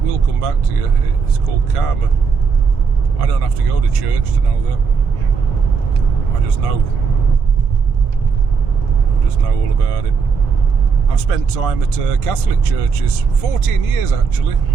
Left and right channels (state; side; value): quieter; left; 5.4 dB